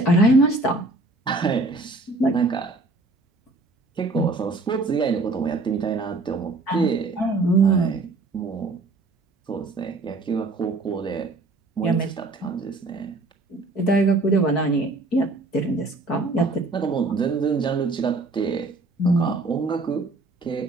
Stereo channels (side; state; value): left; quieter; 3.2 dB